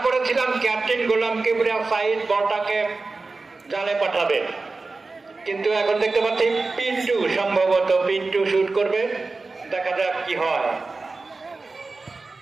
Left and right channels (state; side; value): quieter; left; 3.7 dB